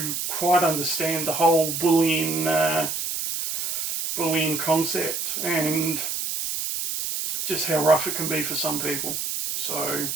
quite understand the whole bullying concept, and just how rough it can be for some people. So,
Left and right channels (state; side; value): noise; right; hiss, 3 dB below the sound